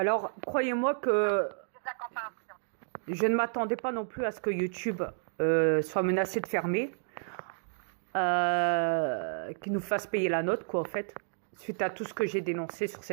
croyez-moi que J'ai de la compréhension. je ne m'attendais pas non plus à ce que YouTube soit menacé de fermer, qu'il nous fasse payer la note, quoi, en fait, suite à tout ce que j'ai dénoncé sur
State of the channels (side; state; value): left; silent; digital silence